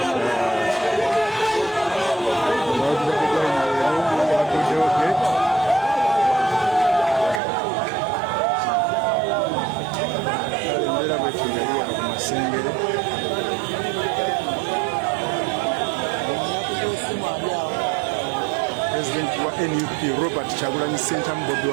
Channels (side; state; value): left; drops out; at 7.4 s